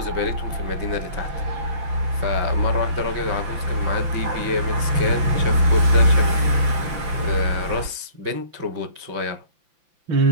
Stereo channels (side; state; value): left; late; 5.8 ms